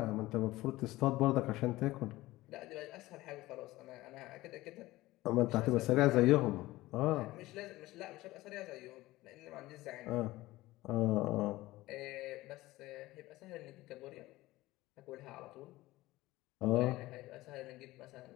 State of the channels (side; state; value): right; quieter; 18.1 dB